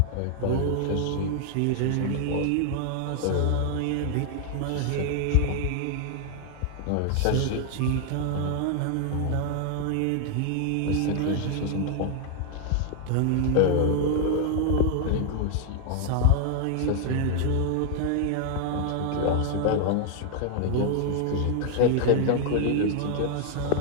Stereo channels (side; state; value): both; different; correlation 0.00